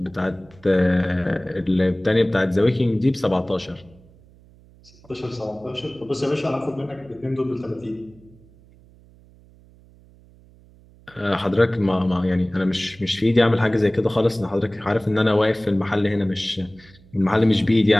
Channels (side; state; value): right; noise; hum, 26 dB below the sound